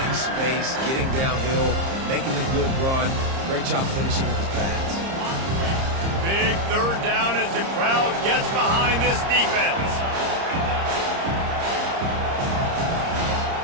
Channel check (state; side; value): late; left; 30 ms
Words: space, getting downhill, making a good run. Great job finishing with his pass. Big 3rd down as the crowd gets behind this defense.